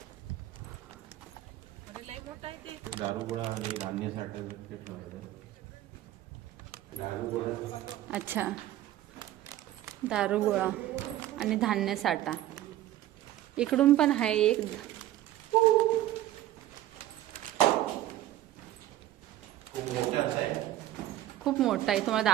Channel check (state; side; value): quieter; left; 13.8 dB